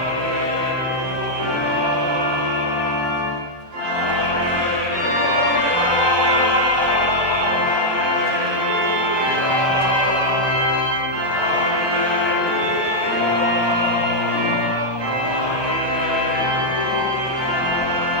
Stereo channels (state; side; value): late; left; 1.2 ms